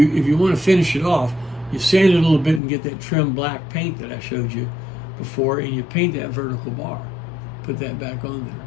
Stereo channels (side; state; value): right; drops out; at 2.6 s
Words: want to finish it off, you sand it a little bit and get that trim black paint that I showed you before, and you paint that vertical bar. Put that back on